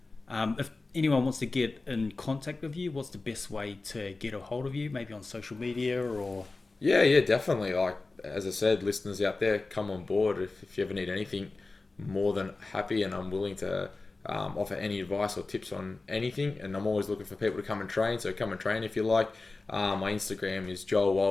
If anyone wants to get in contact with you, what's the best way to get a hold of you? Maybe on social media or... Yeah, definitely. Like, as I said, listeners out there, come on board. If you ever need anything, more than happy, and I'm willing to offer any advice or tips on anything. And I'm always looking for people to come and train, so come and train if you like. My Instagram is Joel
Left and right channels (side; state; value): right; quieter; 3.5 dB